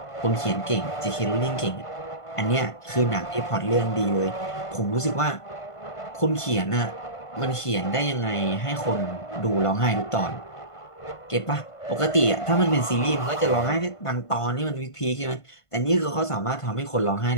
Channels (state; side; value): late; right; 1.5 ms